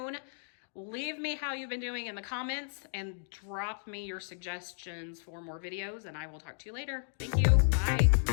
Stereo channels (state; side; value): silent; right; digital silence